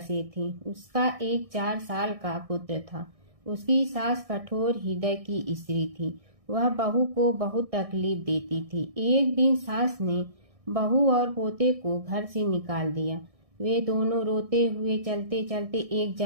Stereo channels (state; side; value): late; left; 1.6 ms